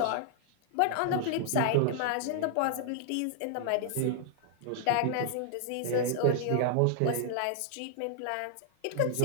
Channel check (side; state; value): both; different; correlation -0.01